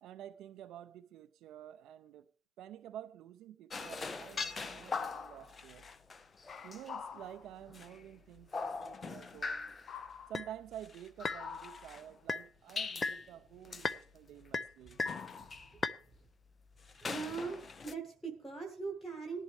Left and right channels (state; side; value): normal; both; correlation 0.77